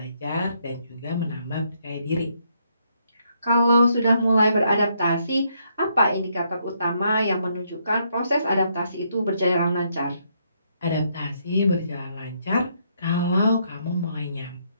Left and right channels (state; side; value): inverted; both; correlation -0.74